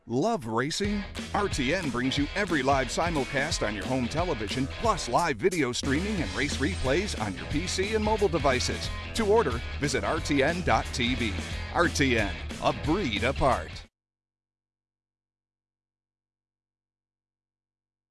Love racing? RTN brings you every live simulcast on your home television, plus live video streaming and race replays on your PC and mobile devices. To order, visit rtn.tv. RTN, a breed apart.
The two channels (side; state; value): both; identical; correlation 1.00